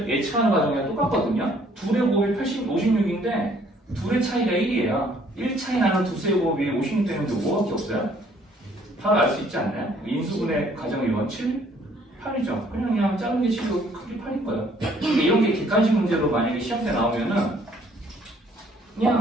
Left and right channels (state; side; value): normal; both; correlation 0.62